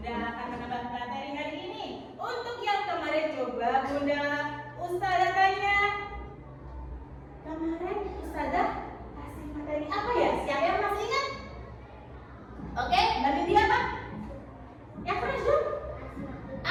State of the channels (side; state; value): both; identical; correlation 1.00